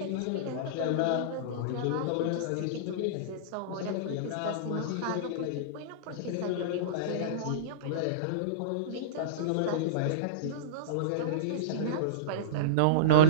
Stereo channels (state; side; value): different; both; correlation -0.04